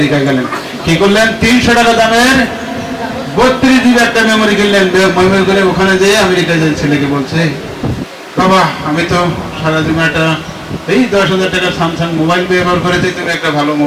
গেলেন, কি করলেন, 300 টাকা দামের 32 GB একটা মেমোরি কিনলেন। মেমোরি করে ওখানে যেয়ে আমেরিকায় যে ছেলেকে বলছে বাবা আমি তো সারা জীবন একটা এই 10,000 টাকার স্যামসাং মোবাইল ব্যবহার করেছি, তুমি একটা ভালো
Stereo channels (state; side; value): identical; both; correlation 1.00